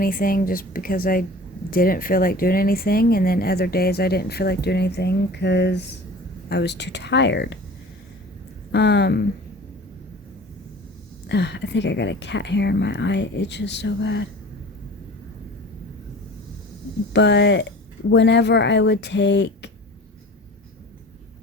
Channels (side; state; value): both; normal; correlation 0.40